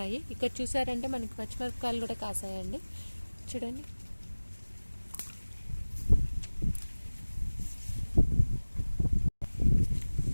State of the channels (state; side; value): inverted; both; correlation -1.00